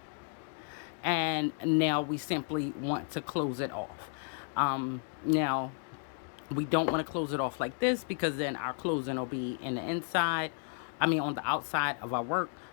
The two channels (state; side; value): silent; right; 56 dB below the other